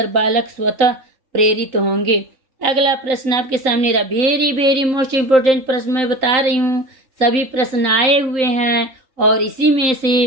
बालक स्वतः प्रेरित होंगे। अगला प्रश्न आपके सामने रहा। वेरी मोस्ट इम्पोर्टेंट प्रश्न मैं बता रही हूँ। सभी प्रश्न आए हुए हैं और इसी में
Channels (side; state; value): left; late; 3.9 ms